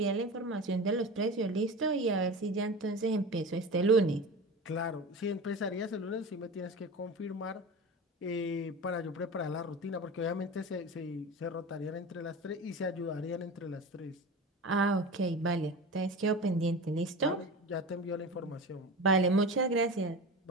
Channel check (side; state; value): both; normal; correlation 0.31